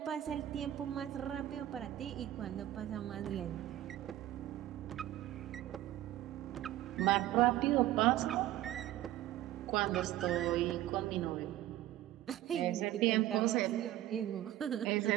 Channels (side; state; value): left; quieter; 14.2 dB